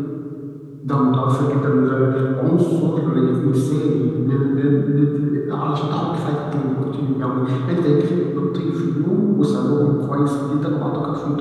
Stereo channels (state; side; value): identical; both; correlation 1.00